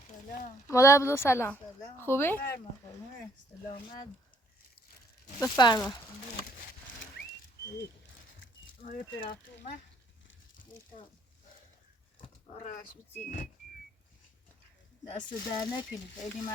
سلام. مادر بزرگ سلام. سلام. خوبی؟ سلامت. بفرما. آره طرف اومد. آرش بچینی. دست در نکنی. خیلی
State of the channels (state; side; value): normal; both; correlation 0.65